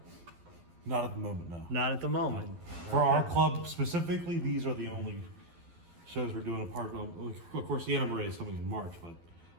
Not at the moment, no. Not at the moment. For our club specifically, these are the only shows we're doing. Apart from, of course, the NMRA is coming in March, but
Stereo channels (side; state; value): left; late; 12 ms